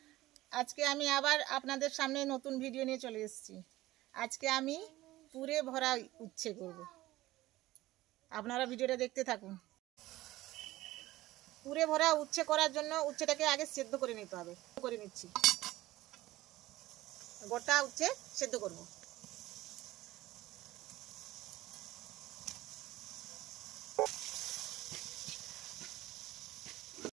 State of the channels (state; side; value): quieter; left; 17.0 dB